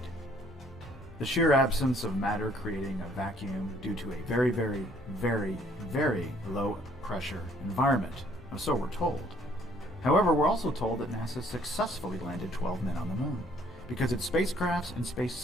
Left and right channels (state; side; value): normal; both; correlation 0.62